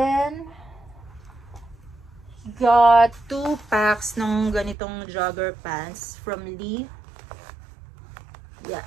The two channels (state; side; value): drops out; left; at 4.8 s